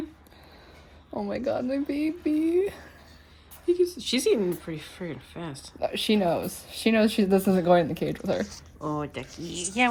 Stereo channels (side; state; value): both; identical; correlation 1.00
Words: Oh my god, my baby. She's eating pretty freaking fast. She knows. She knows this isn't going in the cage with her. Oh, Duckie. Yeah,